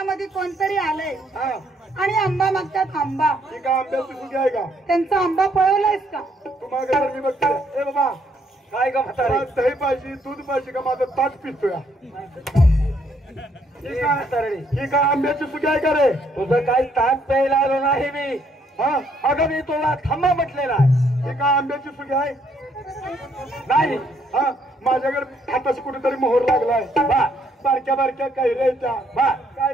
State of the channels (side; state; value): both; normal; correlation 0.69